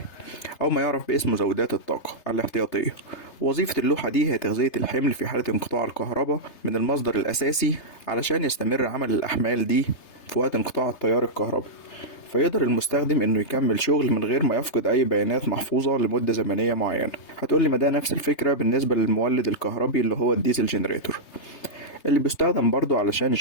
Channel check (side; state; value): right; late; 3.3 ms